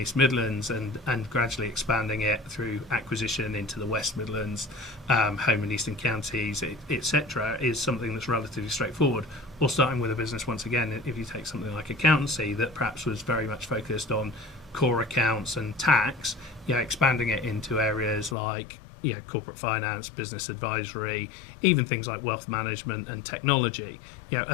Midlands and gradually expanding it through acquisition into the West Midlands, home and eastern counties, etc., is something that's relatively straightforward. Or starting with a business, once again, if you take something like accountancy that perhaps was very much focused on core accounts and tax, expanding it into areas like corporate finance, business advisory, even things like wealth management and technology,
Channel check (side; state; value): right; drops out; at 18.4 s